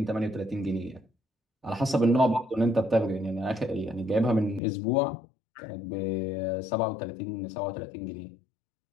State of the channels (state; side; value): drops out; right; at 4.6 s